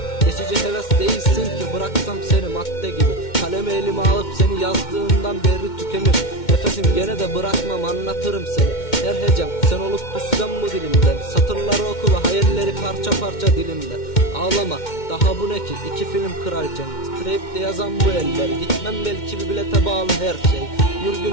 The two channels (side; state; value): right; late; 2.1 ms